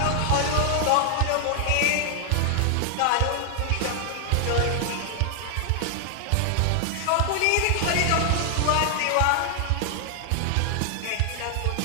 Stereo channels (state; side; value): different; both; correlation 0.00